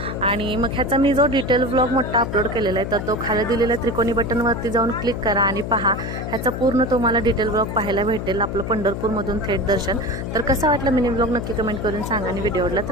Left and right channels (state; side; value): noise; left; hum, 5 dB below the sound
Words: आणि मग ह्याचा मी जो डिटेल व्लॉग मोठा अपलोड केलेला आहे, तर तो खाली दिलेल्या त्रिकोणी बटनवरती जाऊन क्लिक करा आणि पहा. ह्याचा पूर्ण तुम्हाला डिटेल व्लॉग पाहायला भेटेल, आपलं पंढरपूरमधून थेट दर्शन. तर कसा वाटलं मिनी व्लॉग नक्की कमेंट करून सांगा, आणि व्हिडिओ आवडला